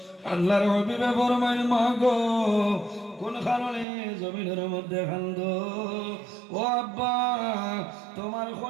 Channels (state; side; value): drops out; left; at 3.9 s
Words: আল্লাহর হাবিবে ফরমায়, মা গো কোন কারণে জমিনের মধ্যে কান্দো? ও আব্বা তোমার